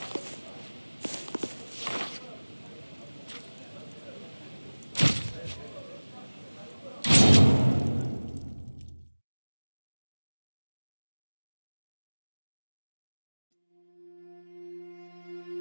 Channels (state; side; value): inverted; both; correlation -1.00